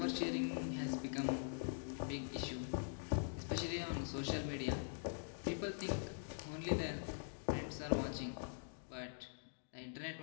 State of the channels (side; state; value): right; silent; digital silence